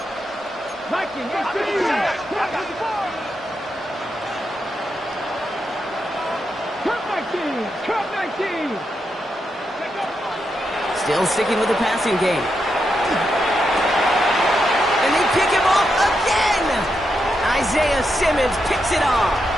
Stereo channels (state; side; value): normal; both; correlation 0.84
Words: Viking 18. Cup 19. Cup 19. Still sticking with the passing game. And they pick him off again! Isaiah Simmons picks it off.